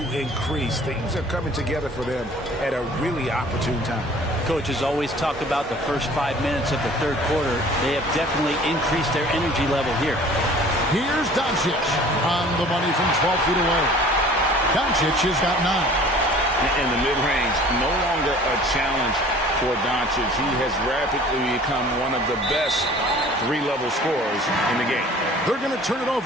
increase. Things are coming together for them at a really opportune time. Coach has always talked about the first 5 minutes of the third quarter. They have definitely increased their energy level here. Here's Doncic on the money from 12 feet away. Doncic has got 9. In the mid-range, no longer a challenge for Doncic. He has rapidly become one of the best three-level scorers in the game. They're going to turn it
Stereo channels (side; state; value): both; normal; correlation 0.49